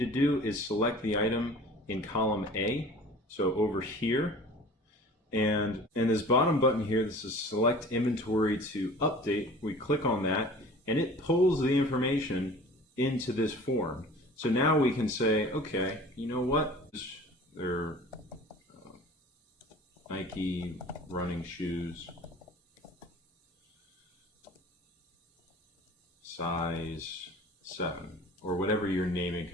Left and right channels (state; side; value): normal; both; correlation 0.43